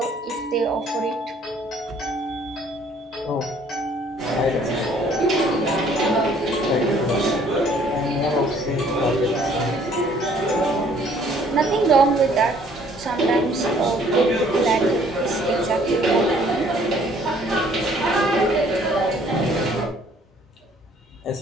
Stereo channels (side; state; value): both; normal; correlation 0.59